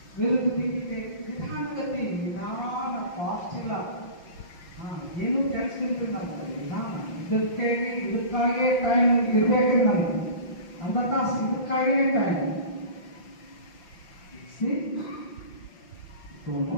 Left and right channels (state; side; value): late; right; 5.9 ms